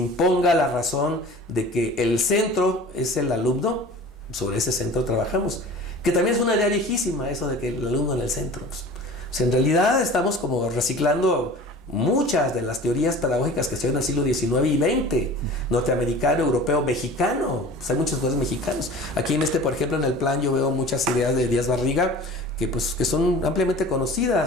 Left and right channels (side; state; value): both; normal; correlation 0.41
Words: la razón de que el centro es el alumno, sobre ese centro trabajamos. Que también es una idea viejísima, eso de que el alumno en el centro. O sea, en realidad estamos como reciclando muchas de las teorías pedagógicas que se dio en el siglo XIX y XX, norteamericano, europeo, mexicano. Pues hay muchos autores mexicanos. Aquí por ejemplo, en el plan yo veo muchas ideas de Díaz Barriga que son ampliamente